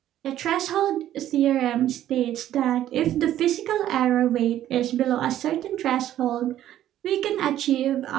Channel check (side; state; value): left; quieter; 12.3 dB